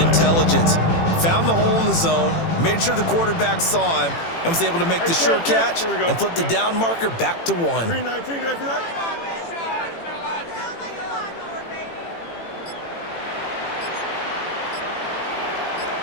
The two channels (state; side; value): late; right; 18 ms